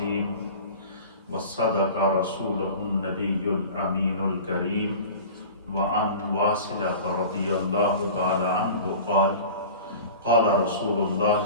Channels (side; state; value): both; inverted; correlation -0.38